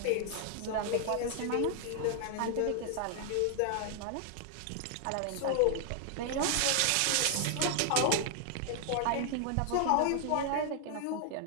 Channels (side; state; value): both; different; correlation 0.00